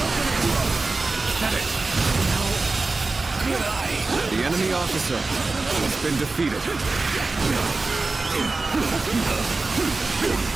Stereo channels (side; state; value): left; quieter; 3.6 dB